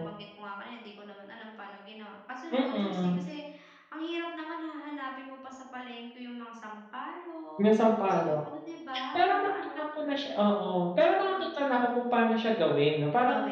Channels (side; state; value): both; identical; correlation 1.00